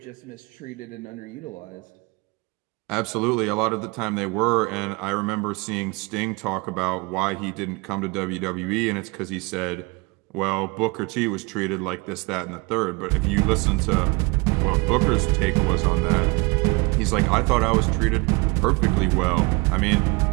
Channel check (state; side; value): quieter; left; 27.4 dB